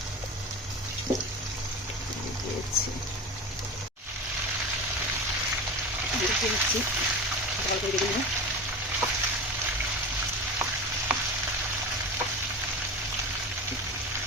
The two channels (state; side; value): normal; both; correlation 0.29